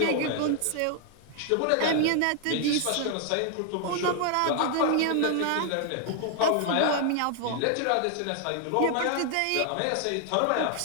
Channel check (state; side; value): different; both; correlation 0.00